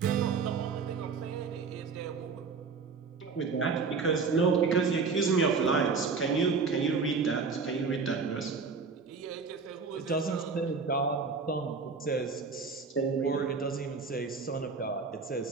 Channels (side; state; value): left; quieter; 4.9 dB